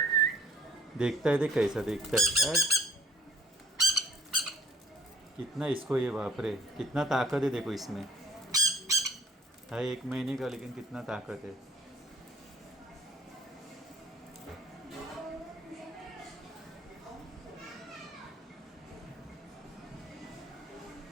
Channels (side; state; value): both; normal; correlation 0.54